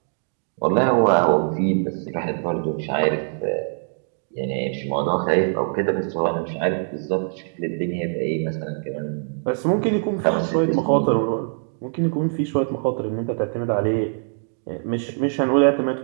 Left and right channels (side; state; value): left; silent; digital silence